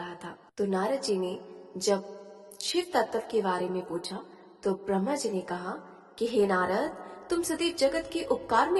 था। तो नारद जी ने जब शिव तत्व के बारे में पूछा तो ब्रह्मा जी ने कहा कि हे नारद, तुम सदैव जगत के उपकार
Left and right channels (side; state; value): both; identical; correlation 1.00